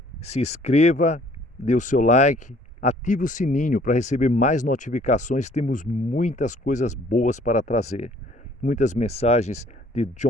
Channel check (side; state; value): both; normal; correlation 0.58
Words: se inscreva, dê o seu like, ative o sininho para receber mais notificações. Temos muitas coisas boas para trazer. Muitas mensagens de